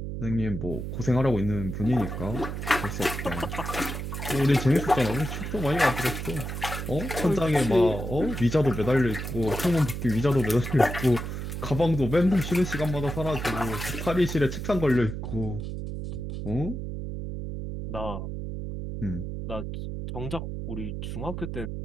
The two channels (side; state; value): right; noise; hum, 5 dB below the sound